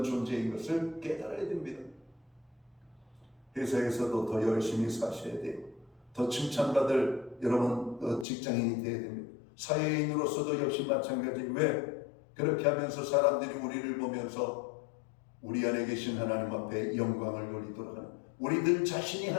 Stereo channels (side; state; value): right; drops out; at 8.2 s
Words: 존재인 것을 깨달아야 됩니다. 회사에서도 더 열심히 사셔야 돼요. 더 칭찬받을 여러분 직장인이 되어야 됩니다. 사회인으로서도 역시 마찬가지. 왜? 그렇게 하면서 사람들이 우리를 보면서 우리 안에 계신 하나님 앞에 영광을 돌리도록 하는, 우리들 자신이